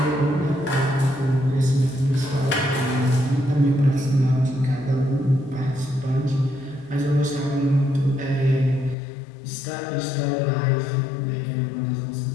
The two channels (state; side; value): drops out; right; at 9.0 s